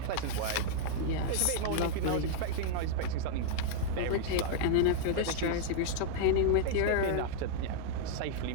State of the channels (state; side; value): different; both; correlation -0.01